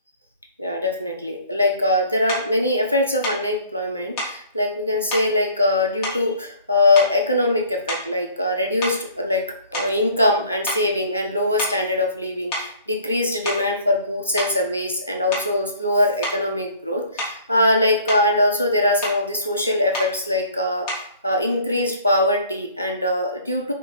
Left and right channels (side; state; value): both; inverted; correlation -0.54